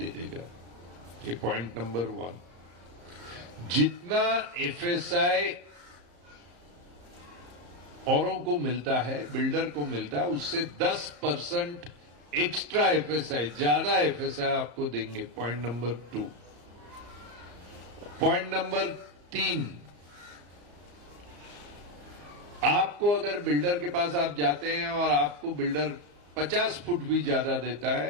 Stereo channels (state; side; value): late; left; 34 ms